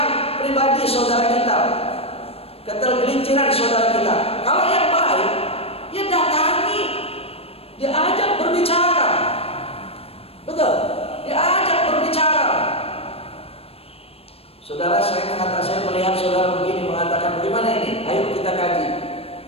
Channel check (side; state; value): right; late; 0.28 ms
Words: pribadi saudara kita, ketergelinciran saudara kita. Kalau yang baik, ya datangi, diajak berbicara. Betul, diajak berbicara. Saudara, saya melihat saudara begini, mengatakan bagaimana ini? Ayo kita kaji.